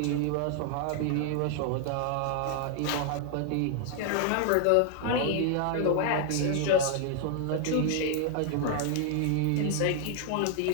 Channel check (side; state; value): both; different; correlation 0.00